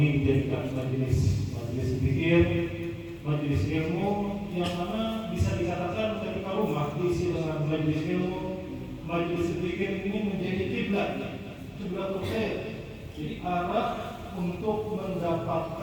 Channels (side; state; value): both; identical; correlation 1.00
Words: dijadikan majelis zikir, majelis ilmu, yang mana bisa dikatakan ketika rumah diisi dengan majelis ilmu, majelis zikir ini menjadi kiblatul khair, jadi arah untuk